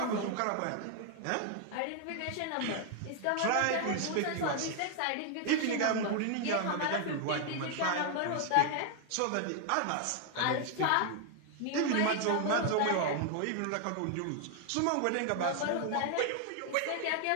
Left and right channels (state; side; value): different; both; correlation 0.00